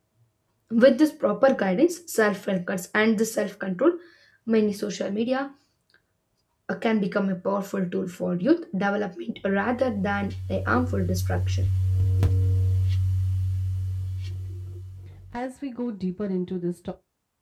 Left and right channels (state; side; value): identical; both; correlation 1.00